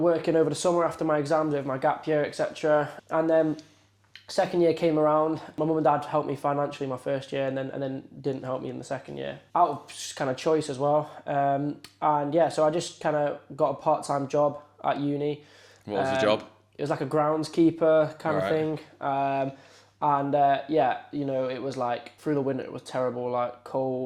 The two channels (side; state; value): both; identical; correlation 1.00